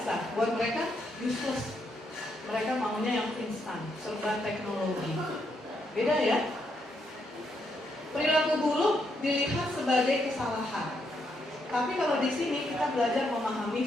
Buat mereka, useless. Mereka maunya yang instan, serba teknologi. Beda ya? Perilaku buruk dilihat sebagai kesalahan. Tapi kalau di sini kita belajar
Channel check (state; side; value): normal; both; correlation 0.77